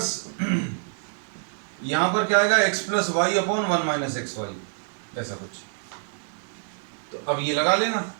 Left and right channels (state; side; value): silent; left; 61 dB below the other